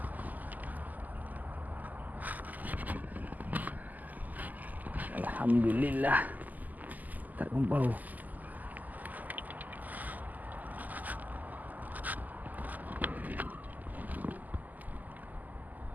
Alhamdulillah. Tak kumpau.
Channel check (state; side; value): late; left; 0.082 ms